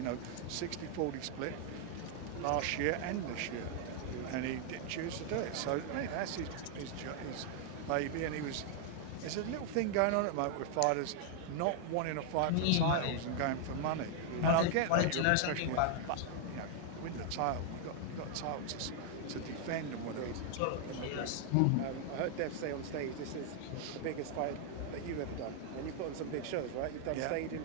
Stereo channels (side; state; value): both; different; correlation 0.00